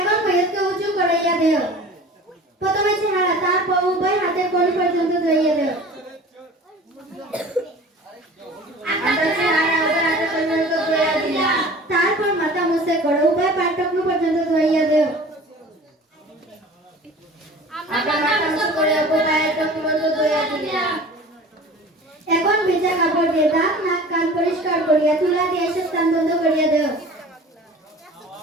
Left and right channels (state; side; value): normal; both; correlation 0.42